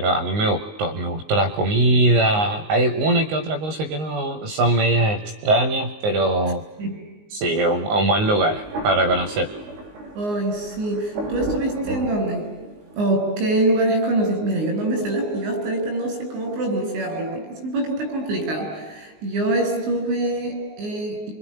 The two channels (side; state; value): left; late; 19 ms